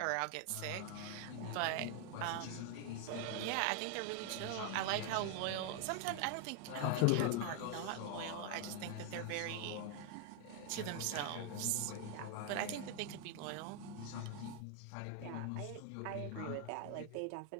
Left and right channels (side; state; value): both; different; correlation 0.00